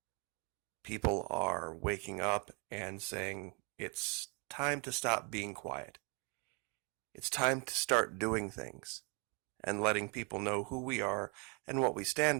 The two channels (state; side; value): quieter; left; 31.5 dB